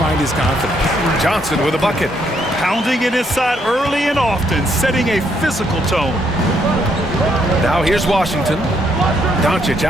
his confidence. Johnson with a bucket. Pounding it inside early and often, setting a physical tone. Now here's Washington. Doncic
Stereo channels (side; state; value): both; normal; correlation 0.73